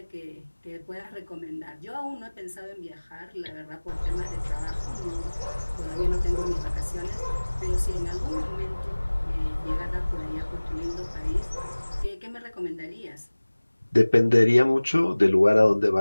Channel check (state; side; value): inverted; both; correlation -1.00